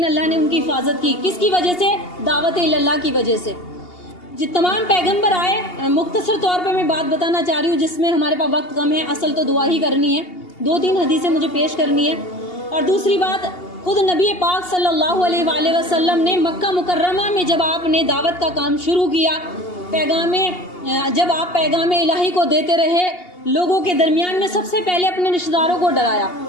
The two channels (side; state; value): right; late; 2.8 ms